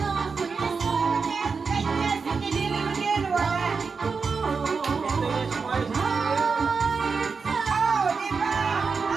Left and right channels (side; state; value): left; quieter; 5.0 dB